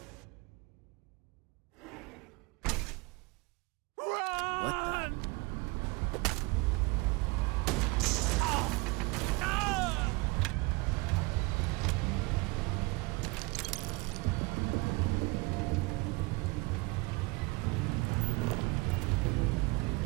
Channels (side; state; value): left; quieter; 26.0 dB